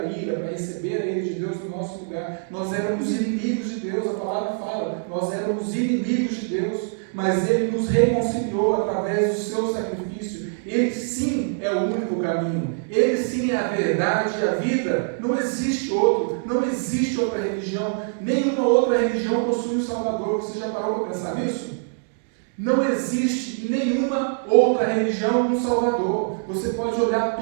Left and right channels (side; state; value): left; silent; 63 dB below the other